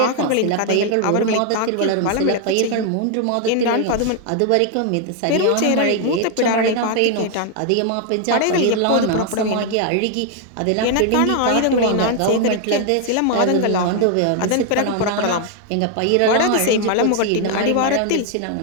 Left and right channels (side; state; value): both; different; correlation 0.00